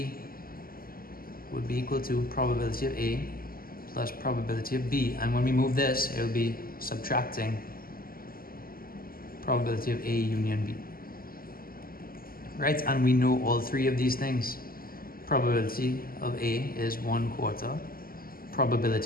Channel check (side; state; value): right; late; 0.42 ms